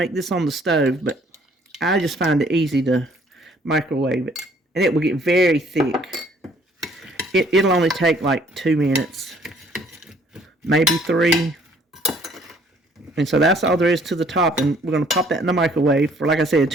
this on the stove, but I just find it easy to microwave it. And it will get very thick. It'll only take like 2 minutes, maybe 3. And so that's all there is to the top. And we're going to pop that in the microwave for, like I said,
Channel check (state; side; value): normal; both; correlation 0.61